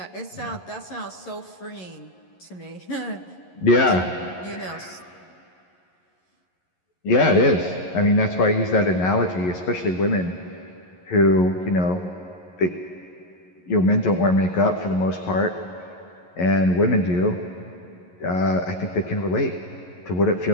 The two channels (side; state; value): right; late; 11 ms